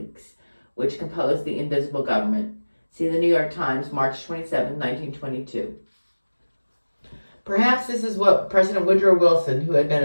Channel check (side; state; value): both; inverted; correlation -1.00